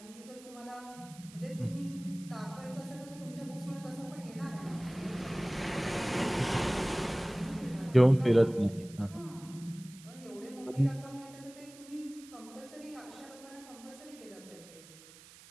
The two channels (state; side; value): noise; right; hiss, 20 dB below the sound